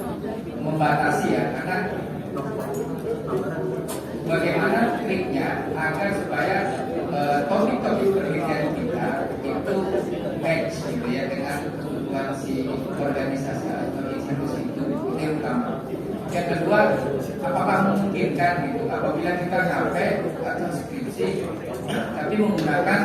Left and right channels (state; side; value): identical; both; correlation 1.00